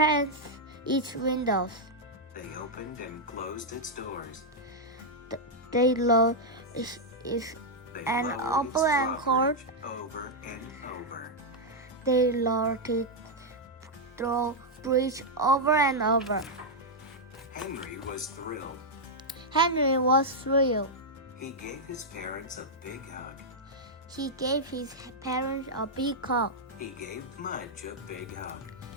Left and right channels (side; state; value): both; normal; correlation -0.03